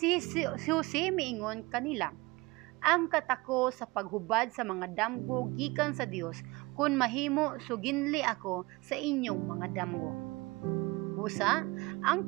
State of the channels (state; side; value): quieter; left; 23.2 dB